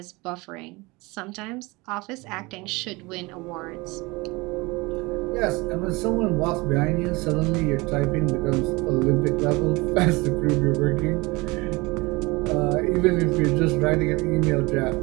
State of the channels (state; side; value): quieter; left; 24.1 dB